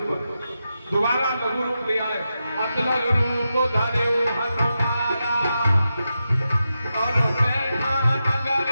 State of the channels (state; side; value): inverted; both; correlation -0.89